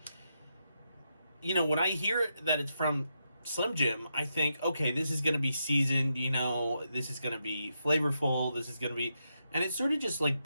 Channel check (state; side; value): inverted; both; correlation -0.84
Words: you know, when I hear that it's from Slim Jim, I think, okay, this is going to be seasoned, you know, this is going to be flavorful, this is going to be, and it's sort of just like